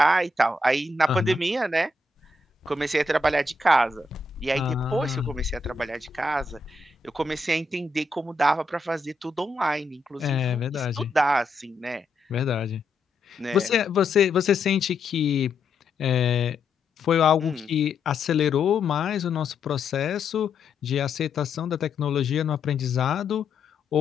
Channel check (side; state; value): right; quieter; 3.3 dB